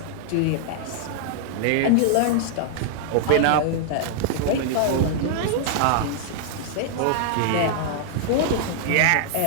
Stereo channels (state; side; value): different; both; correlation -0.01